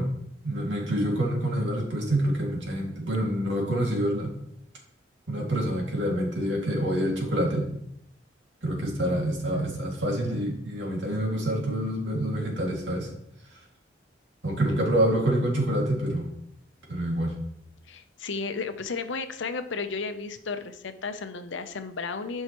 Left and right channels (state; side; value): normal; both; correlation 0.58